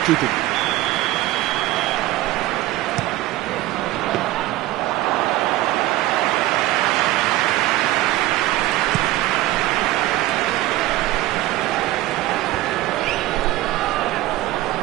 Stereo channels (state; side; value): quieter; left; 16.5 dB